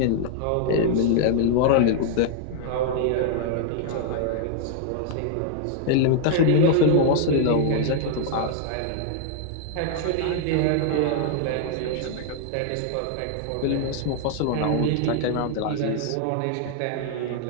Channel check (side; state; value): both; different; correlation -0.01